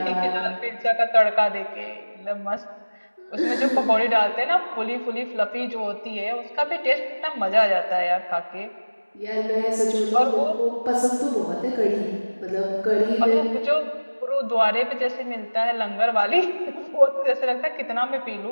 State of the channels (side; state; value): both; inverted; correlation -1.00